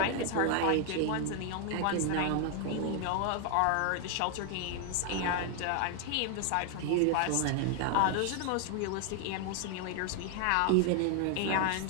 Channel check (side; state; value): both; different; correlation 0.00